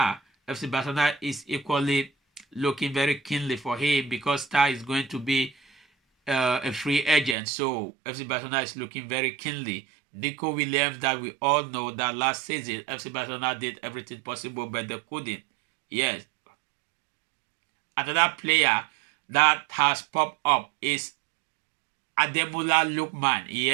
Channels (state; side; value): drops out; left; at 7.4 s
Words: FC Barcelona is equally looking very keenly for him, because Tah is going to be a free agent. So FC Barcelona is looking very keenly. Nico Williams, that we all know that last season FC Barcelona did everything possible, but they couldn't. Yes. Another player that has popped up is Ademola Lookman.